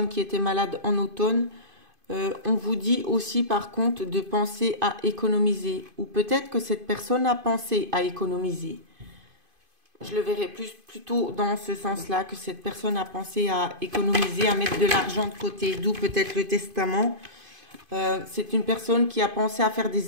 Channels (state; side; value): late; left; 2.5 ms